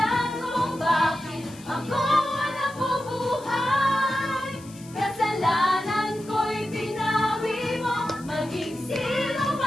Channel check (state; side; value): noise; left; hiss, 21 dB below the sound